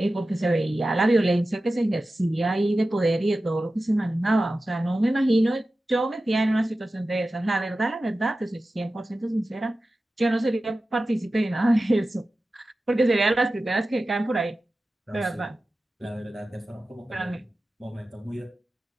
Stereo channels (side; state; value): both; normal; correlation 0.94